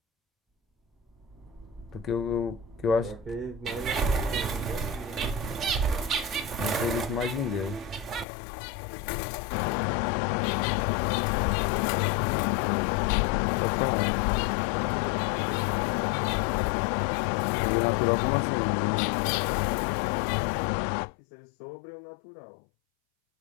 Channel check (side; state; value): right; drops out; at 8.2 s